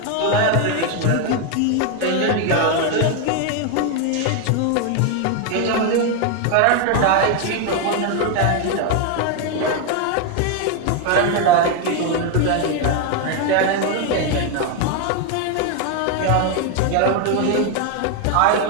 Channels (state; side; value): different; both; correlation 0.01